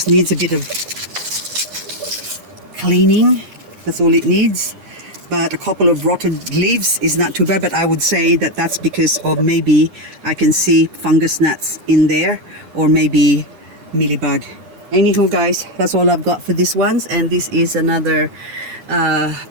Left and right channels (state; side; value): late; left; 9.9 ms